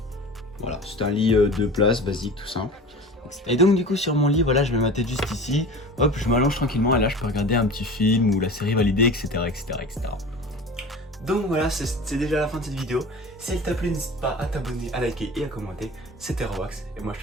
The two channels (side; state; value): both; normal; correlation 0.37